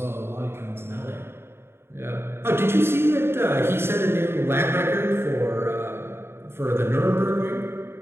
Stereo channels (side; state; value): left; late; 0.12 ms